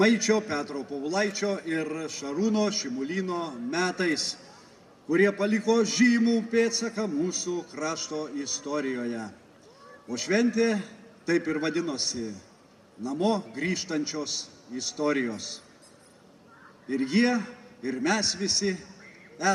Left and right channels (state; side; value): identical; both; correlation 1.00